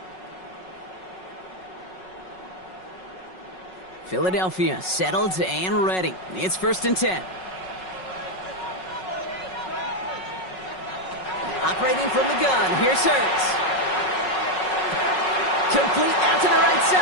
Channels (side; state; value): right; late; 5.4 ms